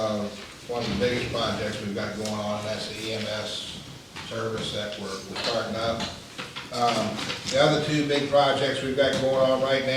one of the biggest projects we've got going on, and that's the EMS service that we're starting up. The other two big projects we've got going on right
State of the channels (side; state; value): both; identical; correlation 1.00